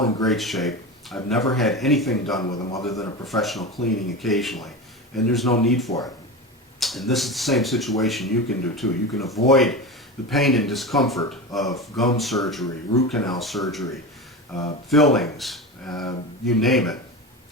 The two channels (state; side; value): normal; both; correlation 0.25